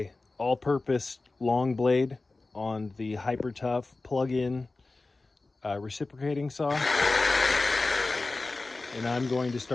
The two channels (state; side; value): quieter; right; 3.4 dB